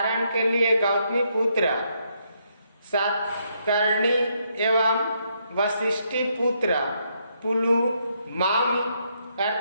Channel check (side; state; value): both; inverted; correlation -0.75